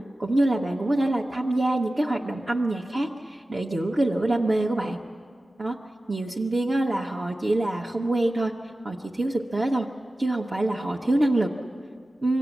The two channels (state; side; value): normal; both; correlation 0.95